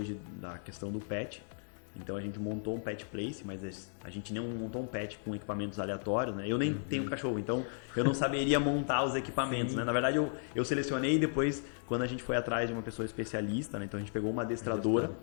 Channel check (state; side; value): silent; right; digital silence